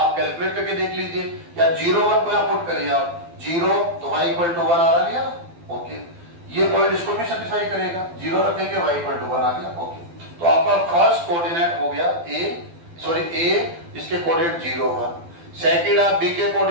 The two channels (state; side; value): late; left; 12 ms